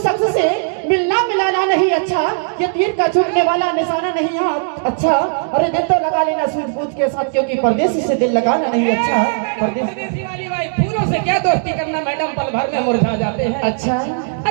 से मिलना मिलाना नहीं अच्छा ये तीर का चूकने वाला निशाना नहीं है अच्छा अरे दिल तो लगा लेना सूझबूझ के साथ क्योंकि परदेसी से दिल लगाना नहीं अच्छा परदेसी वाली भाई फूलों से क्या दोस्ती करना मैडम पल भर में मुरझा जाते हैं अच्छा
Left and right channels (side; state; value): left; silent; digital silence